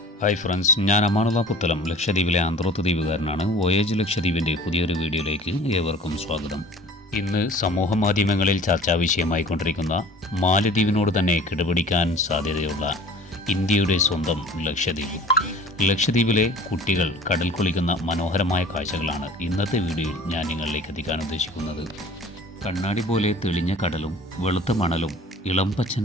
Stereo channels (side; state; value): both; normal; correlation 0.45